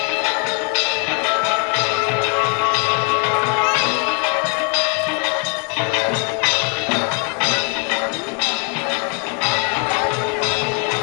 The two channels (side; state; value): right; quieter; 38.5 dB